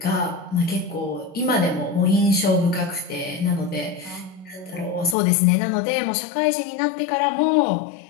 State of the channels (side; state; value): right; drops out; at 5.2 s